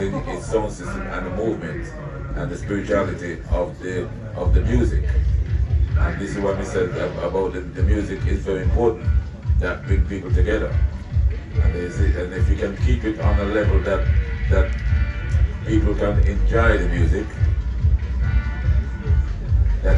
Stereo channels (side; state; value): both; identical; correlation 1.00